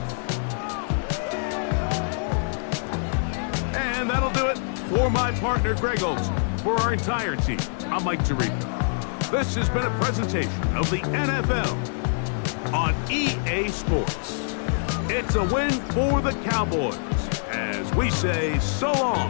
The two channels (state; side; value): silent; right; digital silence